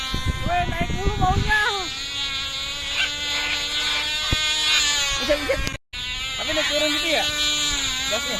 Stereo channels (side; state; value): both; identical; correlation 1.00